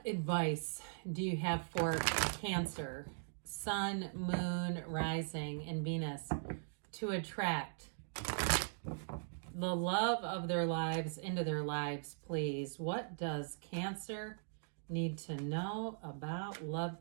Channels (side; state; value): left; silent; digital silence